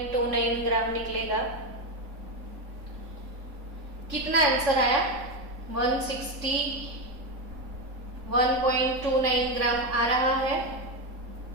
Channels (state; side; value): late; left; 3.5 ms